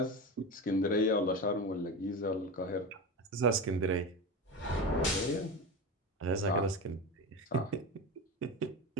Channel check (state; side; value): normal; both; correlation 0.23